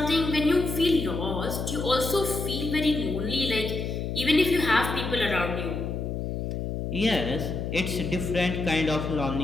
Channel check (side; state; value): left; noise; hum, 3 dB below the sound